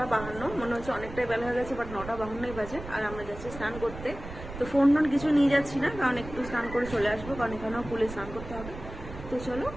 মনে হচ্ছে অনেকটাই বেলা হয়ে গেছে, বাট 9:52 বাজে। আর আমরা যাচ্ছি স্নান করতে। তো ফোন টোন কিছু নিয়ে যাচ্ছি না, কারণ একটু স্নান করে চলে আসবো, কারণ এখানেও পুলে স্নান করতে হবে। তো চলো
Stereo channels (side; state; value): right; noise; rumble, 12 dB below the sound